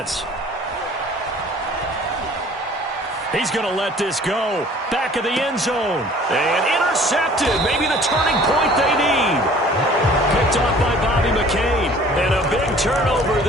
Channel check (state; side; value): normal; both; correlation 0.51